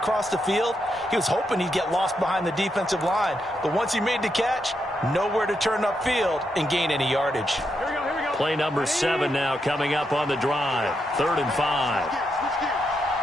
the field. He was hoping he'd get lost behind the defensive line, but once he made the catch, nowhere to turn upfield and gain any yardage. Here we go. Play number 7 now coming up on the drive. 3rd and 5.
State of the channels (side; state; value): both; normal; correlation 0.82